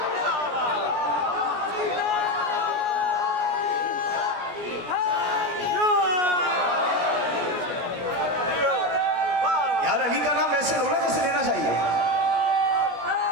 یار علی کا نام ویسے رونا جیسے لینا چاہیے.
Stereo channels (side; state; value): left; late; 17 ms